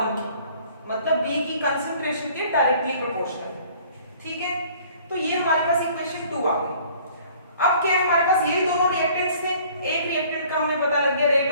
की, मतलब बी की कंसंट्रेशन के डायरेक्टली प्रोपोर्शनल। ठीक है, तो ये हमारे पास इक्वेशन 2 आ गई। अब क्या है, हमारे पास ये दोनों रिएक्टेंट्स थे, एक रिएक्टेंट का हमें पता लग गया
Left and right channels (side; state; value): both; inverted; correlation -0.54